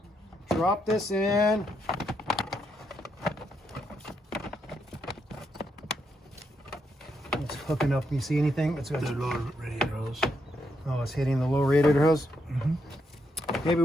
drop this in. It's hooking up. Can you see anything? It's got The lower radiator hose. Oh, it's hitting the low radiator hose. Mm-hmm. Maybe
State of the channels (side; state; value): both; normal; correlation 0.79